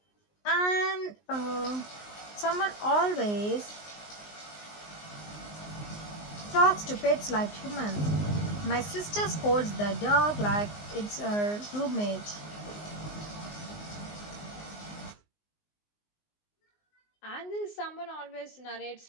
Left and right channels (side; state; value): right; late; 19 ms